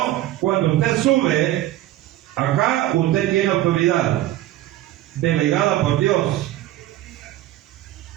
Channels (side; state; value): left; quieter; 14.8 dB